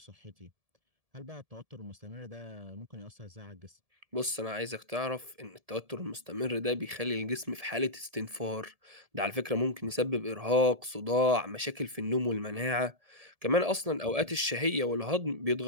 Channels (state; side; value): late; left; 1.7 ms